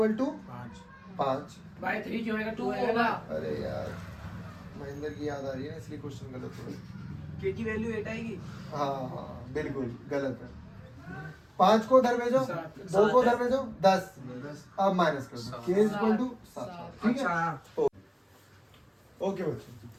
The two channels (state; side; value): identical; both; correlation 1.00